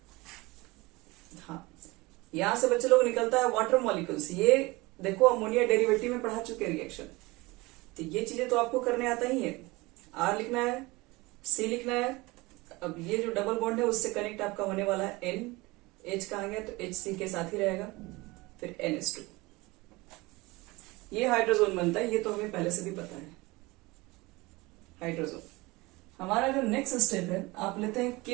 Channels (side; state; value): left; quieter; 22.7 dB